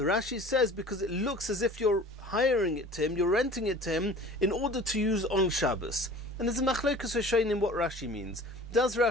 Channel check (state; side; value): normal; both; correlation 0.44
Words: Rashi says because it looks as if you're hiring it to him, you're renting it to him in order to use on Shabbos. And there's a machlokes in what Rashi means. Does